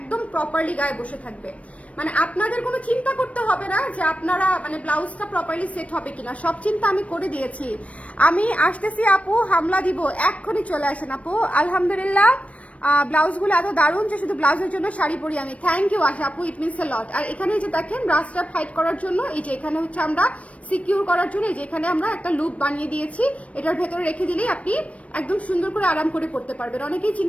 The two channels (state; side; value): late; right; 0.064 ms